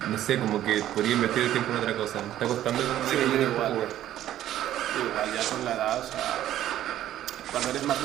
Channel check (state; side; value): quieter; left; 12.4 dB